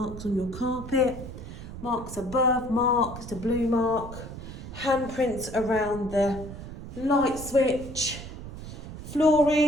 on your carpet. Marks above, marks, the blue mark. Handprints around the light switch.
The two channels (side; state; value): right; noise; rumble, 11 dB below the sound